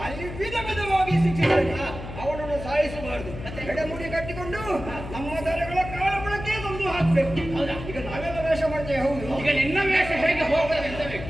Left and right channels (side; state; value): left; noise; hum, 10 dB below the sound